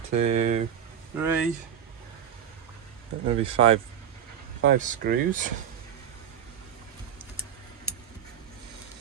2, 3. Maybe 5 screws.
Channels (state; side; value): quieter; left; 8.8 dB